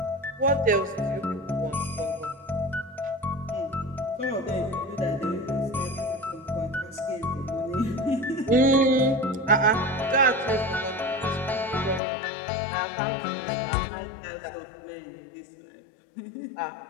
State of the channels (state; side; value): drops out; right; at 12.0 s